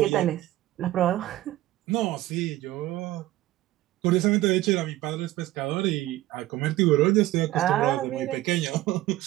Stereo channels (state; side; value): quieter; left; 15.7 dB